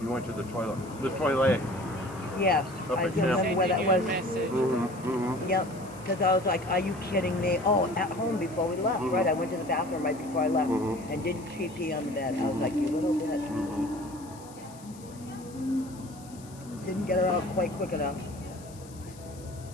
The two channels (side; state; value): left; noise; hiss, 21 dB below the sound